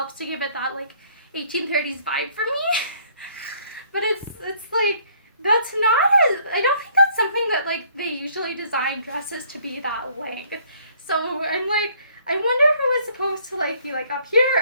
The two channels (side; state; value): both; inverted; correlation -0.61